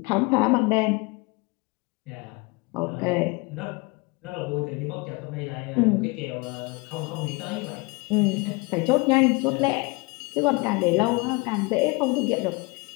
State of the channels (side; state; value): right; quieter; 27.2 dB